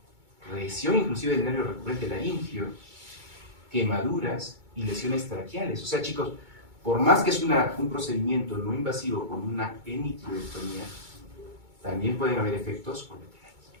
lesión inclusive del nervio recurrente laríngeo, quemaduras y lesiones traqueales. O sea, chicos, por más que es un procedimiento no invasivo con una hemitiroidectomía, también pueden haber efectos colaterales.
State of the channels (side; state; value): left; late; 2.2 ms